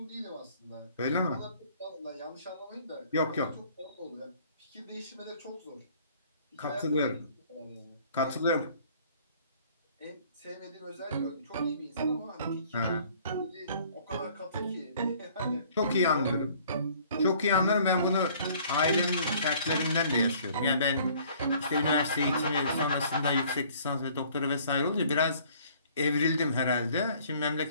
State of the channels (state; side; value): inverted; both; correlation -0.56